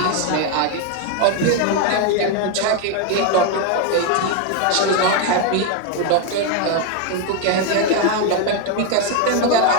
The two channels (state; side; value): different; both; correlation 0.01